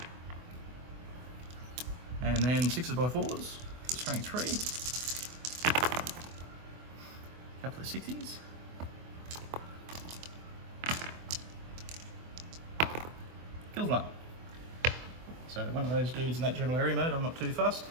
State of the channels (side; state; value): left; late; 24 ms